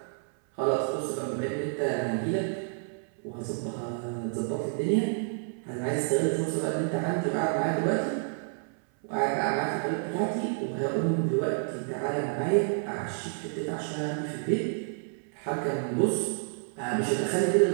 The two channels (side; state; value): left; silent; 58 dB below the other